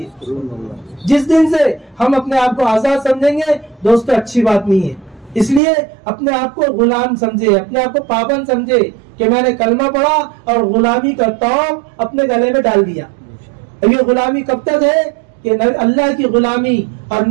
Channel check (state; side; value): drops out; left; at 5.6 s